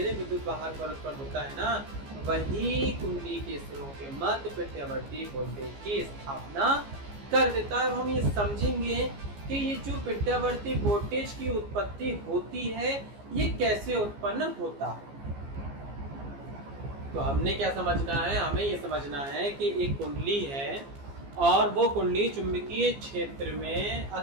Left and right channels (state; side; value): late; left; 15 ms